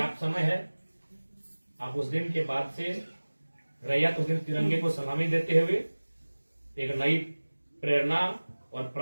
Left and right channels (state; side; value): inverted; both; correlation -1.00